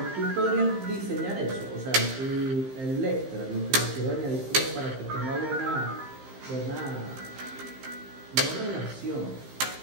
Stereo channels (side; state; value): left; late; 15 ms